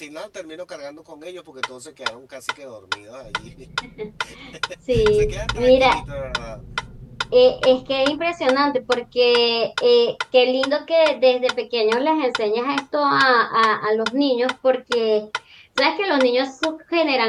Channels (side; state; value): both; identical; correlation 1.00